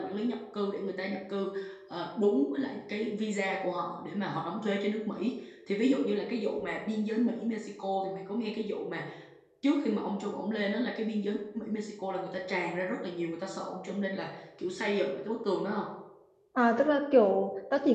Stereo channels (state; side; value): identical; both; correlation 1.00